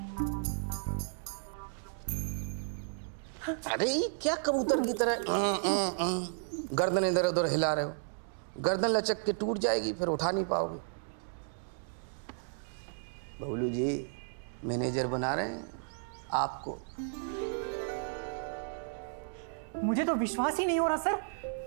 अरे क्या कबूतर की तरह गर्दन इधर उधर हिला रहे हो? गर्दन लचक के टूट जाएगी, फिर उठा नहीं पाओगे। बबलू जी मैनेजर बना रहे हैं आपको। मुझे तो विश्वास ही नहीं हो रहा sir.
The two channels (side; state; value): left; silent; digital silence